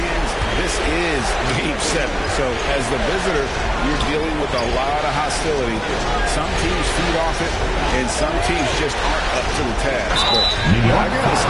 this is Game 7. So as the visitor, you're dealing with a lot of hostility. Some teams feed off it, and some teams just aren't up to the task. But I got a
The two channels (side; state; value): both; identical; correlation 1.00